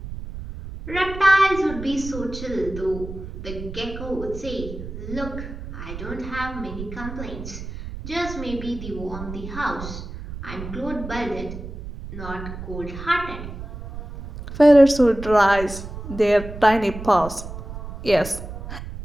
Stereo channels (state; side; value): noise; right; rumble, 10 dB below the sound